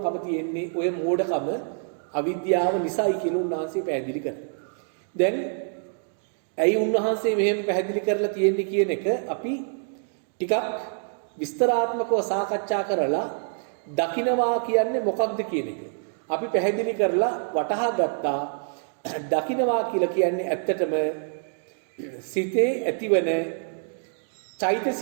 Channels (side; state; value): left; silent; 61 dB below the other